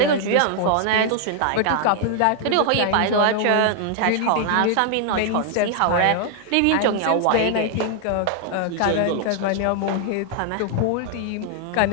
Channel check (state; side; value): different; both; correlation 0.00